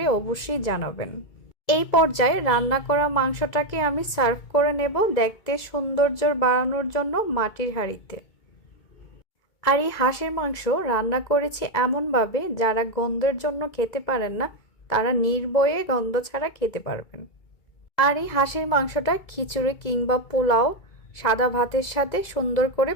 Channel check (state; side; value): late; right; 2.0 ms